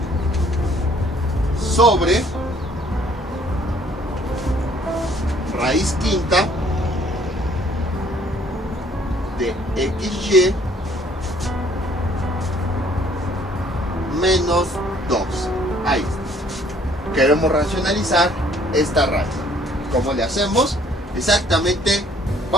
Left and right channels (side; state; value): both; normal; correlation 0.60